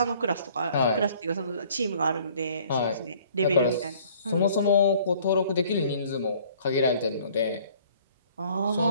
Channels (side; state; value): both; inverted; correlation -0.56